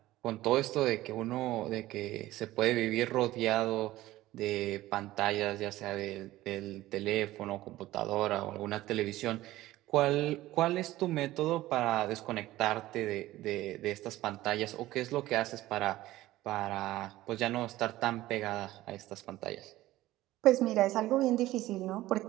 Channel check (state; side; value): quieter; left; 16.3 dB